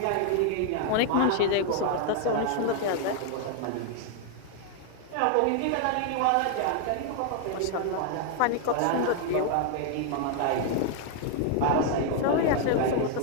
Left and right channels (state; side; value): different; both; correlation 0.00